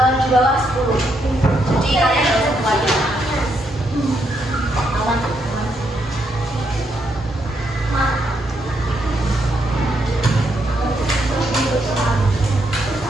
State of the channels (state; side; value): normal; both; correlation 0.77